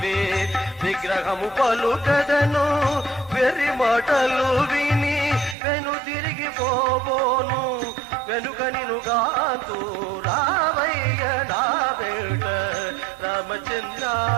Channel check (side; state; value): left; drops out; at 5.6 s